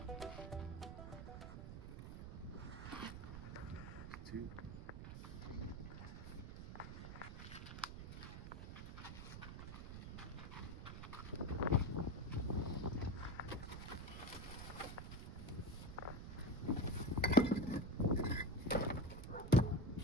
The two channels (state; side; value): noise; right; rumble, 8 dB below the sound